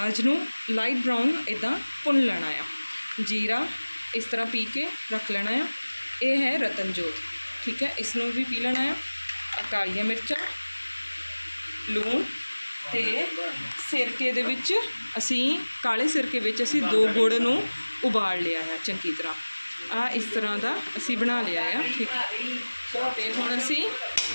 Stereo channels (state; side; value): inverted; both; correlation -1.00